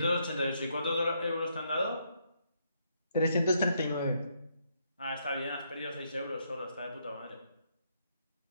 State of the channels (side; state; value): both; inverted; correlation -0.75